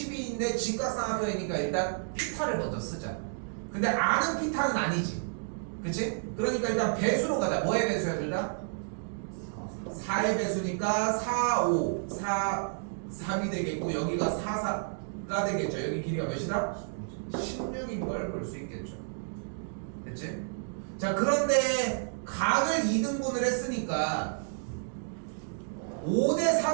직각삼각형이니까 일단 피타를 먼저 쓰자. 근데 아는 피타는 아니지. 그치? 그러니까 일단 배수로 가자. 뭐의 배수야 둘 다? 4의 배수니까 4, 5, 4, 3이 되겠고 여기가 4, 4가 되겠죠. 여기 길이가 몇이다? 16인 걸 볼 수 있겠죠. 됐지? 자, 그런데 각을 2등분을 했으니까 5대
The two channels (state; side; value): silent; left; digital silence